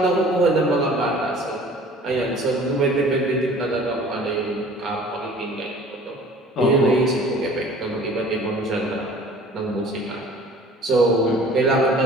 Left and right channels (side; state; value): both; normal; correlation 0.48